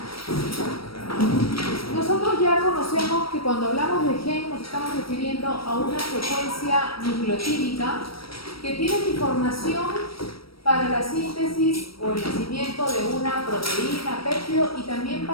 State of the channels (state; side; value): late; right; 0.75 ms